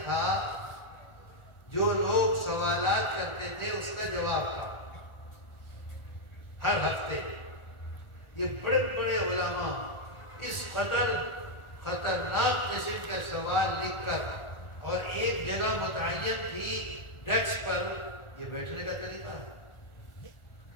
تھا، جو لوگ سوالات کرتے تھے اس کا جواب تھا ہر ہفتے۔ یہ بڑے بڑے علماء اس قدر خطرناک قسم کا سوال لکھ کر، اور ایک جگہ متعین تھی ڈیسک پر، یہ بیٹھنے کا طریقہ ہے،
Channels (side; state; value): right; late; 1.4 ms